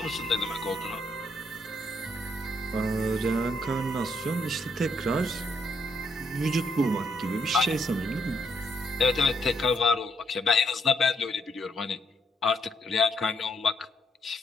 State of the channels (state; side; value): normal; both; correlation 0.74